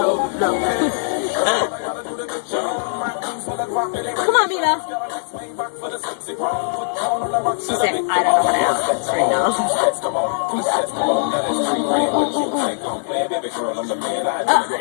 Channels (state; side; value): silent; right; 65 dB below the other